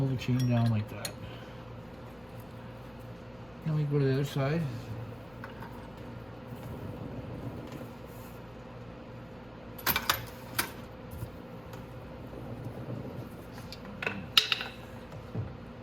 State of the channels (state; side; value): noise; right; rumble, 24 dB below the sound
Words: the chain down like that. Then we go to the other side.